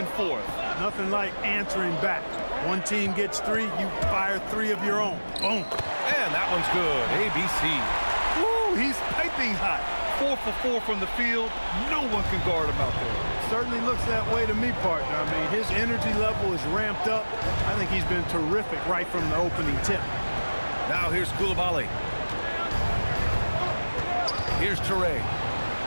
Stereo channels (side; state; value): both; inverted; correlation -1.00